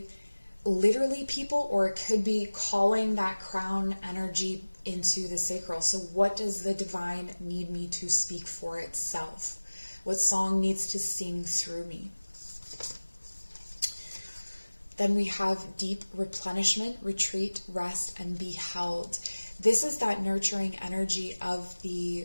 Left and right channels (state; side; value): inverted; both; correlation -1.00